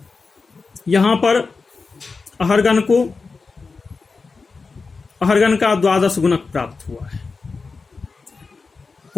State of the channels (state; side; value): quieter; right; 4.4 dB